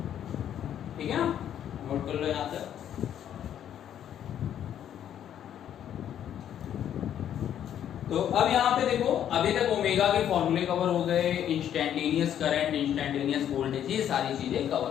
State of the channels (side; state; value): right; quieter; 10.1 dB